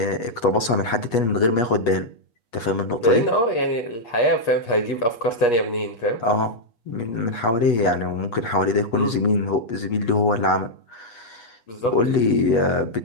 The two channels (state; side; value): late; right; 8.3 ms